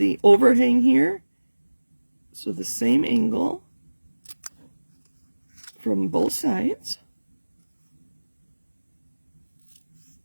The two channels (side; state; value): both; inverted; correlation -1.00